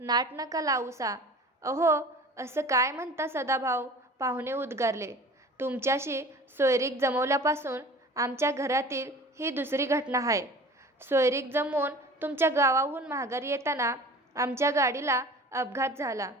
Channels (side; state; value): both; normal; correlation 0.42